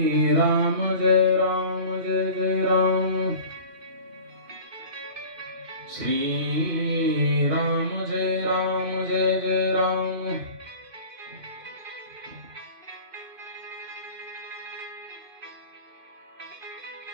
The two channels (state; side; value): late; left; 2.5 ms